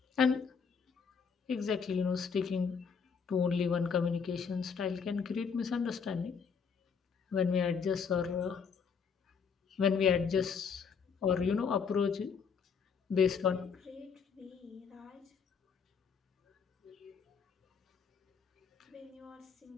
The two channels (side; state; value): right; quieter; 6.1 dB